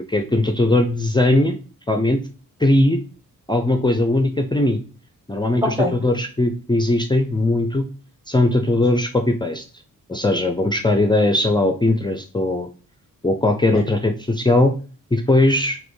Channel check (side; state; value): both; normal; correlation 0.71